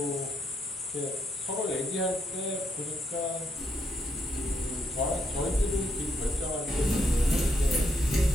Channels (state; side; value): normal; both; correlation 0.76